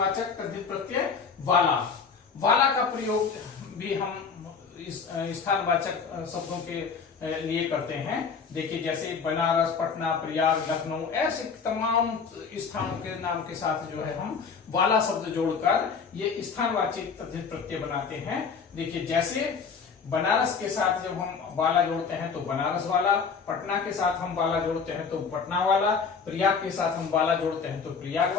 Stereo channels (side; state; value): right; quieter; 5.6 dB